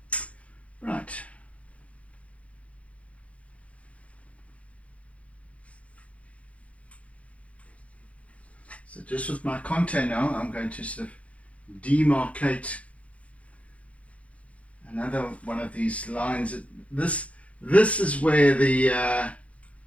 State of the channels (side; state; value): right; late; 0.064 ms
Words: Right. So just with my contour now, I'm going to sort of demarcate another one of these lines. This is where the